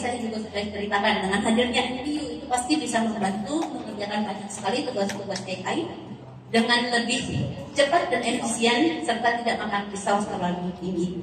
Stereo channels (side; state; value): both; identical; correlation 1.00